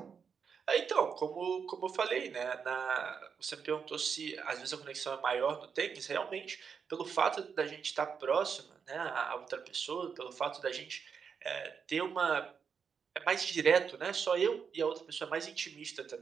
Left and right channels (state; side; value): quieter; left; 6.4 dB